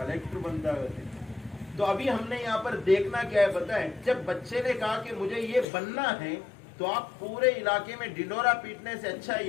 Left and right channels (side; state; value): right; drops out; at 5.7 s